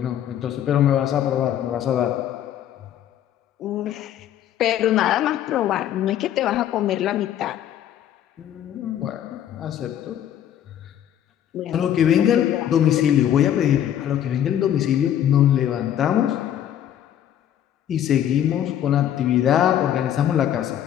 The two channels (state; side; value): quieter; right; 10.7 dB